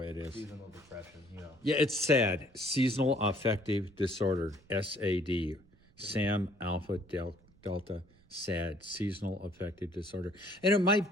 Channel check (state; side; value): noise; right; rumble, 29 dB below the sound